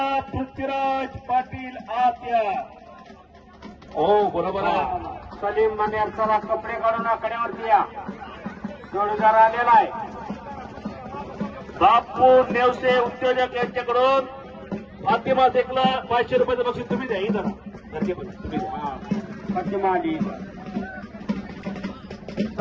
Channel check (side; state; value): both; identical; correlation 1.00